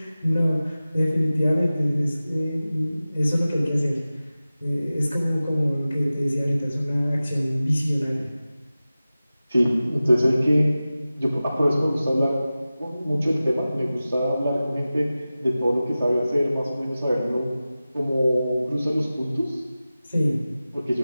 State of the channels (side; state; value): both; inverted; correlation -0.96